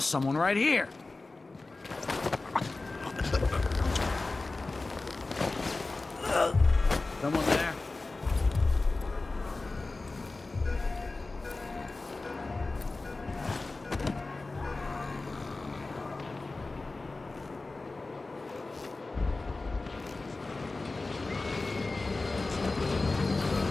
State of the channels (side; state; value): right; quieter; 3.4 dB